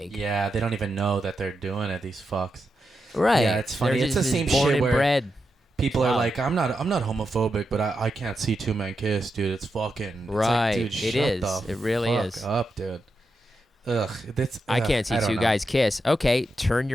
yeah, they don't even know that they're doing it, these fucks. Right. Yeah, it's funny. It's the same born shit where bred. People are like, I'm not homophobic, but I can't see two men kiss, dude. It's fucking right. Like, dude, it is. It really is. Up, dude. I can't see two guys kiss. Okay, turn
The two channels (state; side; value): normal; both; correlation 0.87